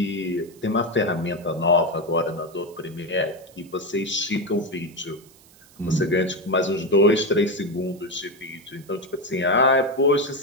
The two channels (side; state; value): right; noise; hiss, 26 dB below the sound